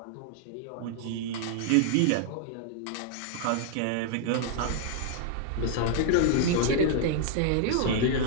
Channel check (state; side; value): different; both; correlation -0.01